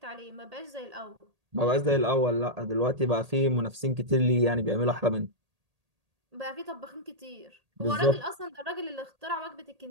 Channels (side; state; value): left; late; 1.8 ms